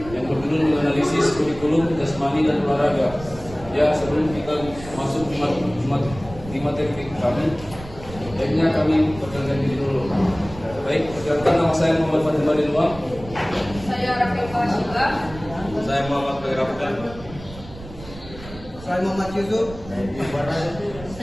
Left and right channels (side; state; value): right; noise; rumble, 15 dB below the sound